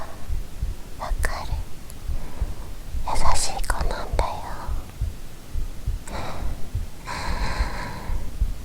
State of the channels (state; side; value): identical; both; correlation 1.00